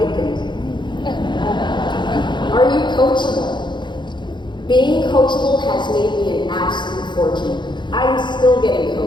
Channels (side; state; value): right; late; 0.22 ms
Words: Are you coachable? Being coachable has made me an absolute fortune. I'm still getting